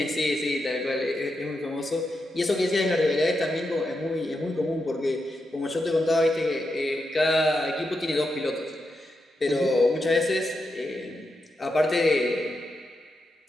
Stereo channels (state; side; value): normal; both; correlation 0.86